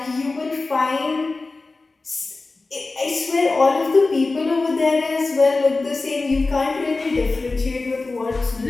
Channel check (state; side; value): quieter; right; 3.6 dB